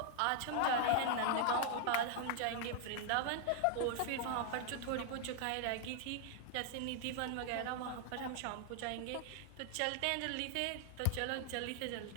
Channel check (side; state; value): both; different; correlation 0.00